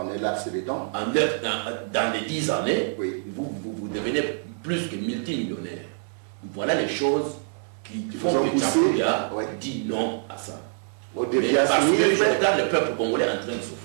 un laps de temps. Dans les 10 années, vous devenez plus que multimillionnaire. Voilà les choses qui font que Tchapouya dit non à ça. Parce que je regarde le peuple congolais en train de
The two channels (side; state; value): left; silent; digital silence